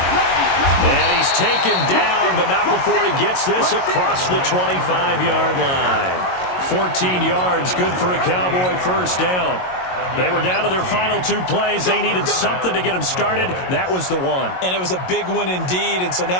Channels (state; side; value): late; right; 22 ms